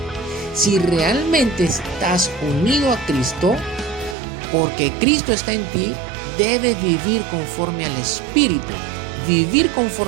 Si realmente estás unido a Cristo, porque Cristo está en ti, debes vivir conforme al Espíritu. Vivir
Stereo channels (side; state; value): left; drops out; at 4.2 s